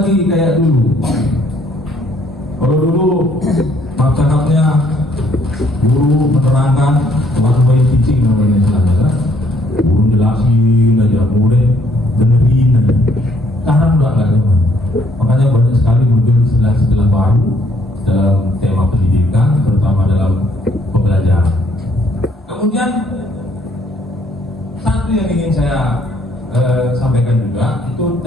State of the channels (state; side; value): normal; both; correlation 0.66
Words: kayak dulu. Kalau dulu cakapnya guru menerangkan one way teaching namanya istilahnya kan, guru jelasin aja, murid dengerin aja. Sekarang udah nggak zaman. Makanya banyak sekali muncul istilah-istilah baru dalam tema pendidikan, terutama dalam pembelajaran. Kemudian satu yang ingin saya sampaikan juga itu